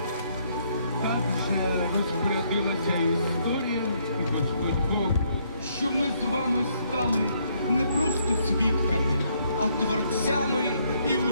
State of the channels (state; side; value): inverted; both; correlation -0.70